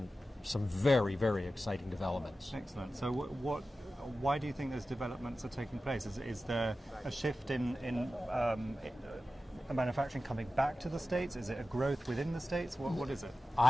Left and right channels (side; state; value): both; normal; correlation 0.94